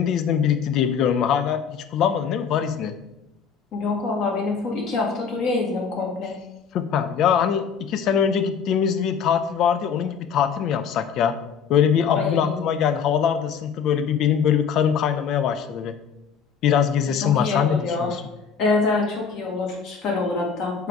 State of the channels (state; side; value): quieter; right; 6.7 dB